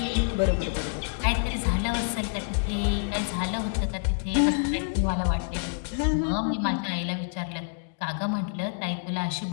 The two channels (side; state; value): right; silent; digital silence